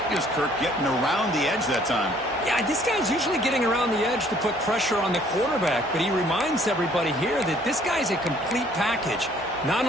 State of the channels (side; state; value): both; normal; correlation 0.60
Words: Kirk, getting around the edge that time. Yeah, this guy's usually getting around the edge to put pressure on the quarterback, but he reminds everybody here that this guy's a complete package. Not